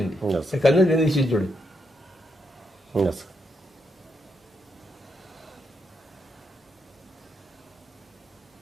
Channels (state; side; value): normal; both; correlation 0.80